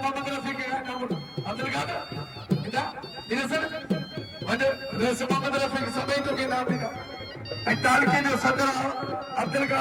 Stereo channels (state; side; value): identical; both; correlation 1.00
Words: मोहम्मद रफी के नाम अब्दुल कादिर इदा दिनसर वजह रेस मोहम्मद रफी के समय तो के नाम दिया ऐ ताल के जो सदर अब्दुल